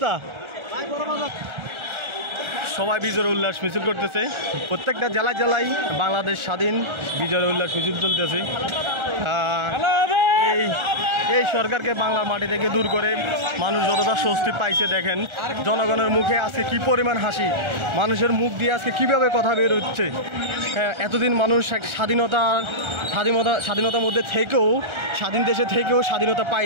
সবাই বিজয় উল্লাস মিছিল করতেছে। প্রত্যেকটা জেলায় জেলায় বাংলাদেশ স্বাধীন বিজয় উল্লাস মিছিল চলতেছে। এই সরকারকে বাংলার মাটি থেকে দূর করে মানুষ যতটা স্বস্তি পাইছে দেখেন। জনগণের মুখে আজকে কি পরিমাণ হাসি, মানুষের মুখ দিয়ে আজকে কিভাবে কথা বের হচ্ছে। এতদিন মানুষ স্বাধীনতার মধ্যে থেকেও, স্বাধীন দেশে থেকেও স্বাধীনতা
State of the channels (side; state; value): left; late; 1.4 ms